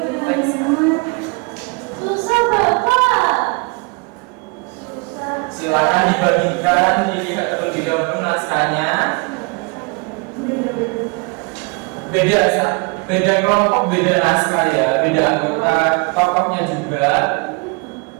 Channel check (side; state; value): left; quieter; 31.2 dB